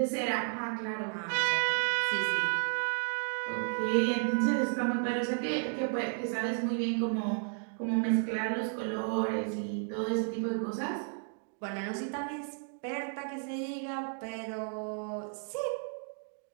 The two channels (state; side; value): silent; left; 56 dB below the other